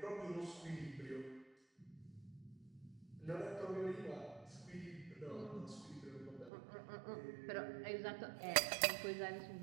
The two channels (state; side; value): drops out; left; at 6.5 s